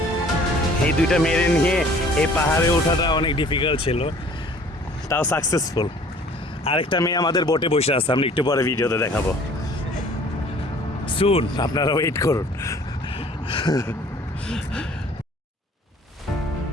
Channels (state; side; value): normal; both; correlation 0.52